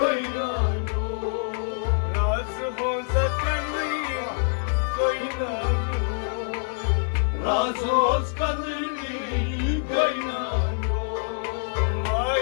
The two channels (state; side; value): silent; right; digital silence